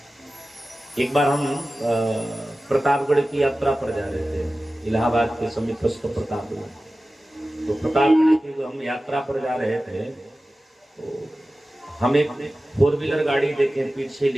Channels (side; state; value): both; normal; correlation 0.95